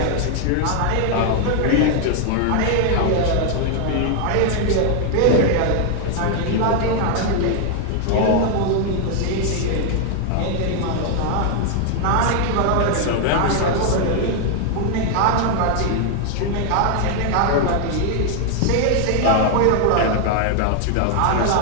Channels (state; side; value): different; both; correlation 0.00